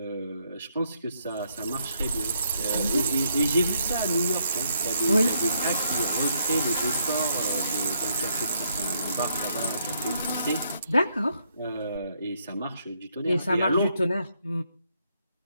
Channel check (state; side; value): inverted; both; correlation -0.73